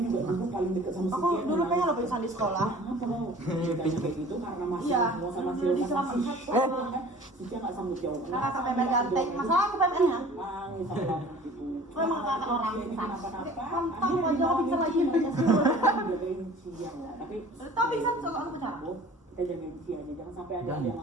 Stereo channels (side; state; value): both; normal; correlation 0.46